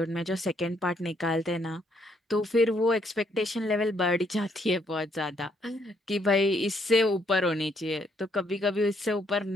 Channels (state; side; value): normal; both; correlation 0.71